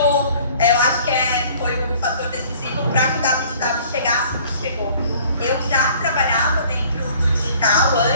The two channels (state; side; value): inverted; both; correlation -0.53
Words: acho que foi o fator decisivo para que o WTW chegasse onde chegou. Eu já trabalhava dentro do digital